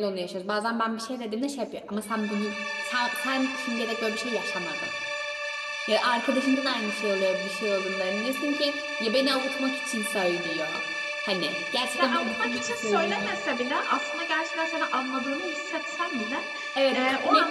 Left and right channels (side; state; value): both; identical; correlation 1.00